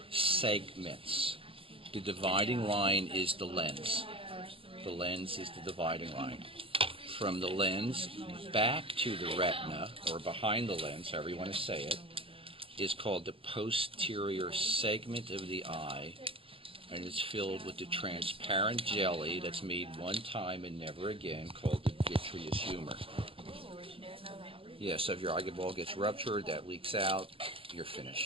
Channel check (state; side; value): late; left; 0.27 ms